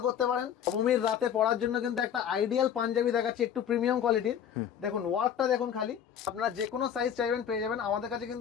করতে পারেন। নবমীর রাতে পরার জন্য কিন্তু একটা আইডিয়াল পাঞ্জাবি দেখাচ্ছি, একটু প্রিমিয়াম কোয়ালিটির। দেখুন ওয়ার্কটা দেখুন, খালি আপনারা যে কোনো সাইজ চাইবেন পেয়ে যাবেন। আমাদের কাছে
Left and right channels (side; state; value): right; quieter; 8.9 dB